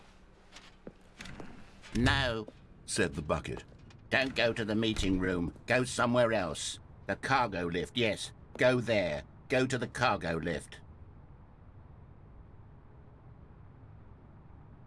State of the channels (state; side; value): identical; both; correlation 1.00